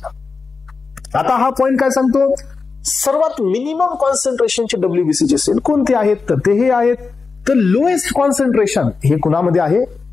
आता हा पॉइंट काय सांगतो? सर्वात मिनिमम कॉन्सन्ट्रेशनचे WBCचे सेल कोणते आहेत? तर ते हे आहेत. तर लोएस्ट कॉन्सन्ट्रेशन हे कुणामध्ये आहे?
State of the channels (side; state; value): right; quieter; 4.6 dB